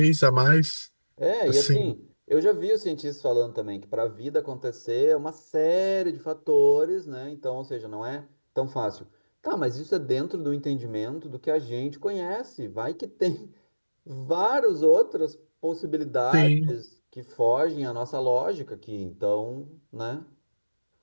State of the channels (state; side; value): inverted; both; correlation -1.00